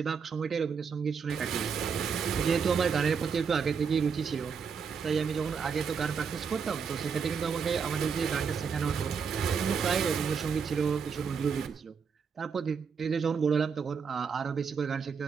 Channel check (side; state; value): left; quieter; 6.1 dB